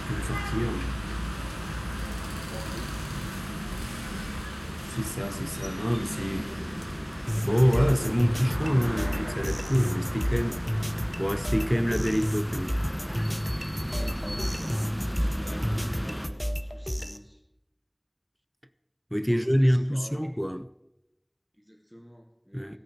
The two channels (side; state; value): both; identical; correlation 1.00